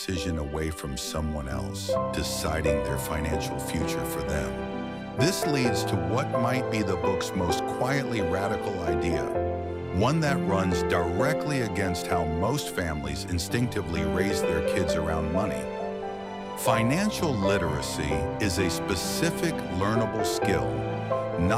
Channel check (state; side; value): identical; both; correlation 1.00